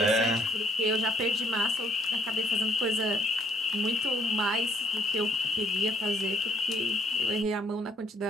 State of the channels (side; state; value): both; normal; correlation 0.64